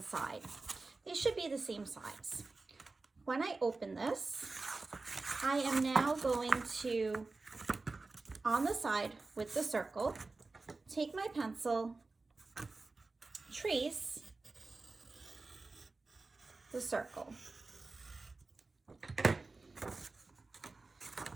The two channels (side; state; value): left; quieter; 3.6 dB